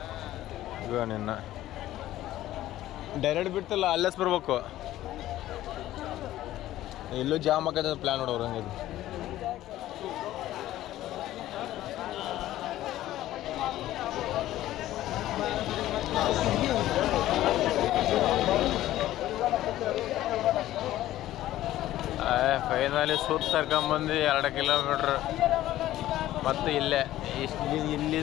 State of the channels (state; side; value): quieter; right; 14.4 dB